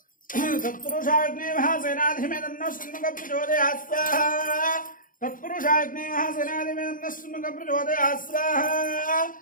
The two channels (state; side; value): late; right; 0.39 ms